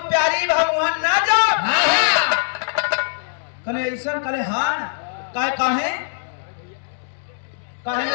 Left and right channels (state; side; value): silent; right; digital silence